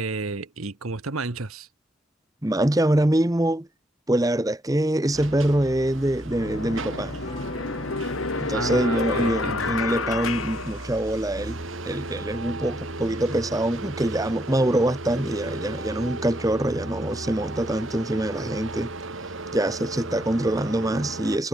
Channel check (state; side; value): normal; both; correlation 0.75